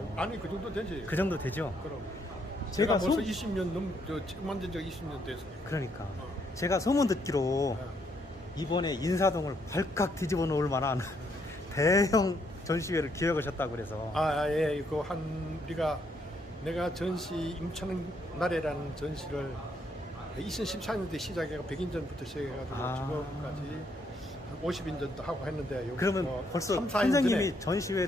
아니 그 정도 되지. 그 정도 되죠? 그럼. 제가 제가 벌써 20년 처음 만든 지 20년 됐어요. 그러니까 제가 소문 듣기로 이번에 인사동을 발칵 뒤집어 놓을 만한 대형 전시회를 기획하셨다고 그래서. 예. 내가 전시 임천 나래라는 전시를 2014년도에 시작해가 100인 전부터 시작해가지고 지금까지 한 50인 전도 하고 했는데 그러면 벌써 3, 4년 선생님이 전에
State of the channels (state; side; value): normal; both; correlation 0.73